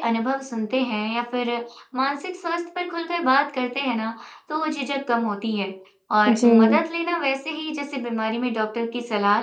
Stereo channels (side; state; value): both; identical; correlation 1.00